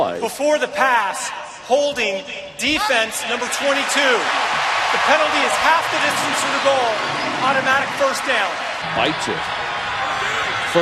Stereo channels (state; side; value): identical; both; correlation 1.00